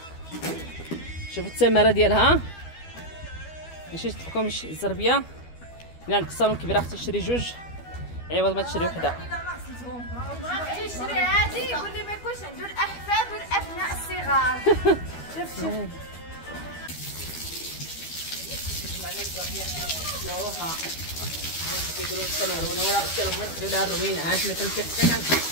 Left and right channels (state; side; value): late; right; 12 ms